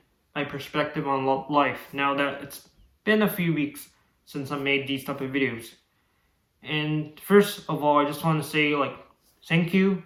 my perspective on life now that it's been a few weeks since I made these type of videos. And first of all, I just want to say, thank you.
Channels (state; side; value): identical; both; correlation 1.00